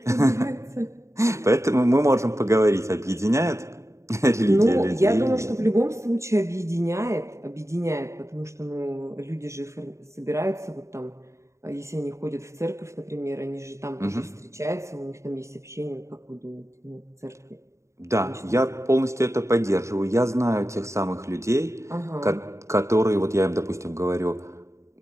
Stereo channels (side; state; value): left; late; 0.14 ms